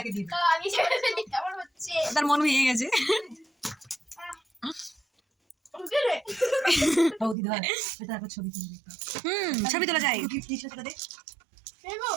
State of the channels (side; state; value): left; drops out; at 7.4 s